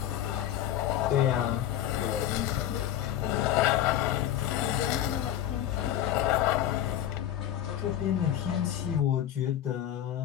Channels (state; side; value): quieter; right; 11.7 dB